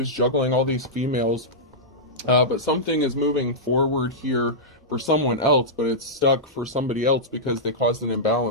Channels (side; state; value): both; normal; correlation -0.12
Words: juggling all these females But something is moving forward here for someone else, but it's stuck for somebody else because they caused an